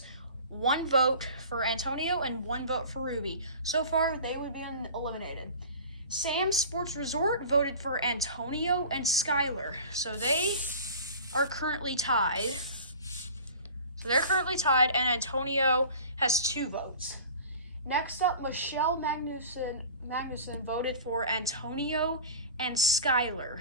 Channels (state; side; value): inverted; both; correlation -0.39